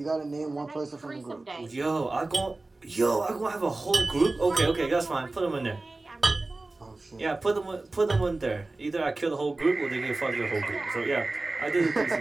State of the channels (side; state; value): left; quieter; 3.1 dB